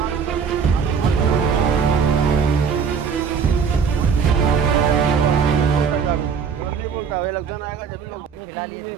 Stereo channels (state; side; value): quieter; left; 6.4 dB